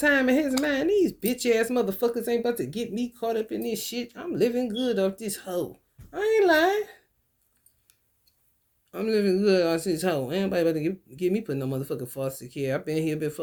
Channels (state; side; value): identical; both; correlation 1.00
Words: in his mind, these bitch ass motherfuckers ain't about to get me caught up in this shit. I'm living good off this hoe. I ain't lying. I'm living good off this hoe. Ain't nobody about to get me putting no motherfucking foster care. I've been here